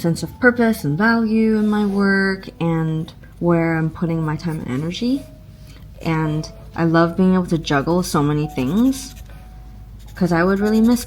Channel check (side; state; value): both; identical; correlation 1.00